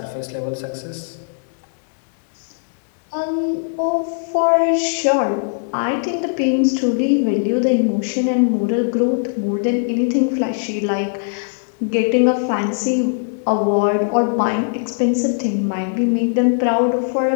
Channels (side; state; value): right; silent; digital silence